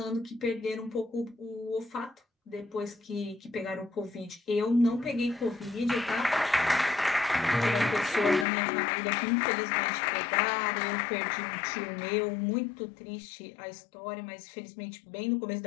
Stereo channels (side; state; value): right; drops out; at 8.5 s